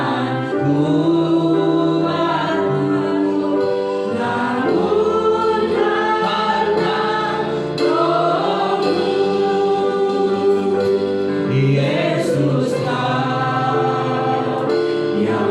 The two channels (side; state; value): both; identical; correlation 1.00